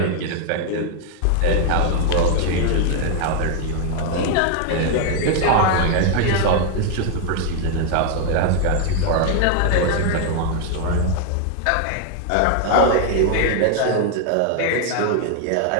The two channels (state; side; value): different; both; correlation 0.00